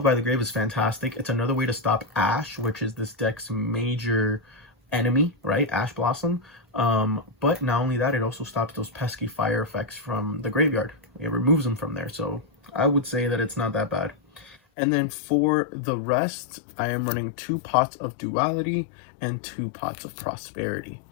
by the Grave is fantastic. It's another way to stop Ash, which is this deck's major enemy, right? Ash Blossom. But not only that, it also stops those pesky fire effects from the graveyard. It removes them from there, so I would say that it's not that bad. And then for the rest, I am running 2 pots of Duality and 2 pots of Prosperity.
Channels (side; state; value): right; drops out; at 14.6 s